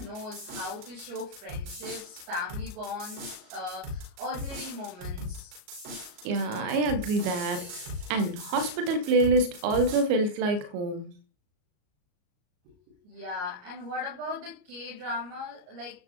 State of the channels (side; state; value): left; late; 33 ms